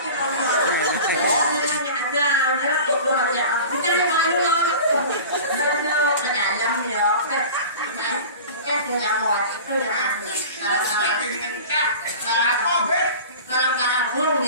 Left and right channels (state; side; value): inverted; both; correlation -0.37